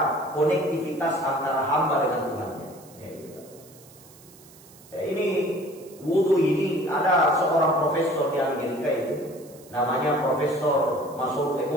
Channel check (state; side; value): noise; right; hiss, 23 dB below the sound